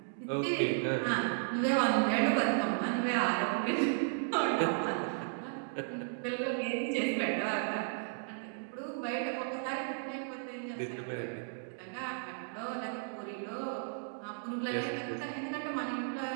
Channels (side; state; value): left; silent; digital silence